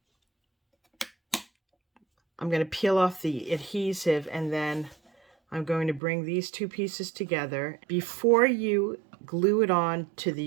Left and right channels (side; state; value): left; drops out; at 6.0 s